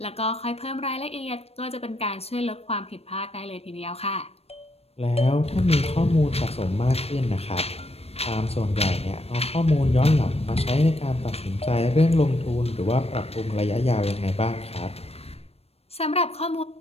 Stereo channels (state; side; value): late; right; 0.29 ms